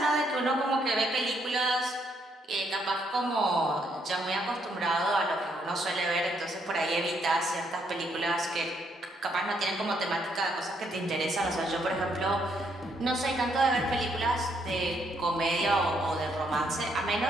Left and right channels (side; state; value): both; normal; correlation 0.73